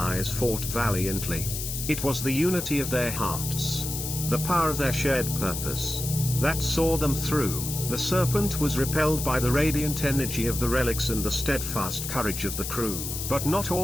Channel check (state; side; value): noise; left; hiss, 5 dB below the sound